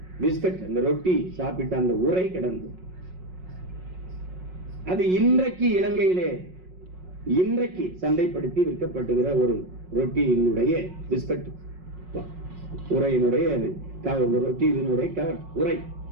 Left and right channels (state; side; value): late; left; 5.5 ms